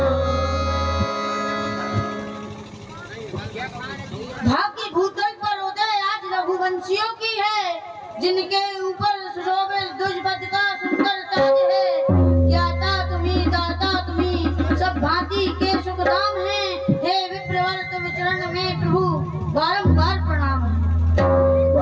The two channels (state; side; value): identical; both; correlation 1.00